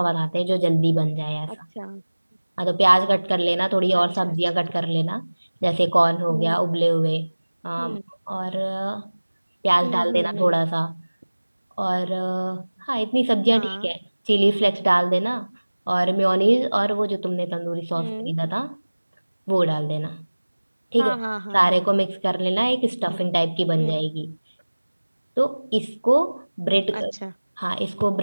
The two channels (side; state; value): both; inverted; correlation -1.00